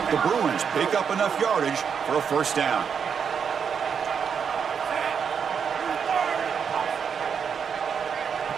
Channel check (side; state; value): left; quieter; 6.9 dB